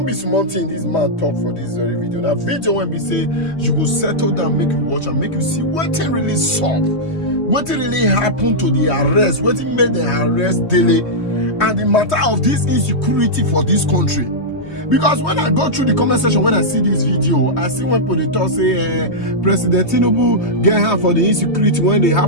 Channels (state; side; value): late; right; 3.2 ms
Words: be small thing this man talk for this very video. Now video when we say you go settle down, make you watch and make you see what really solve, what really happened to the arrest, what made the arrest Dele, and the matter of this insecurity for this country. Because when I go through the comment section, when I see this video, I see when people talk say President Tinubu get her for the insecurity when they